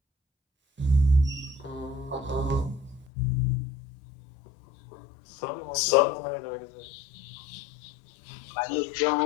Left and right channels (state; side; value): drops out; right; at 3.1 s